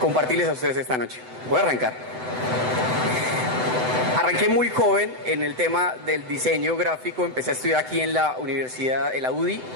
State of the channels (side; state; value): left; late; 7.9 ms